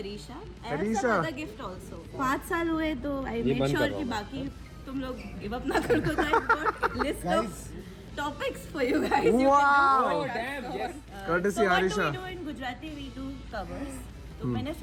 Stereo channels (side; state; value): both; identical; correlation 1.00